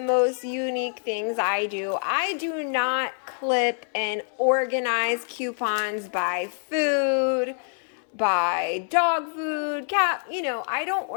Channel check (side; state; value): right; silent; 61 dB below the other